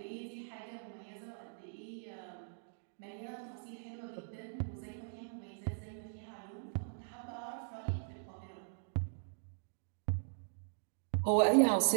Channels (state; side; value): silent; left; digital silence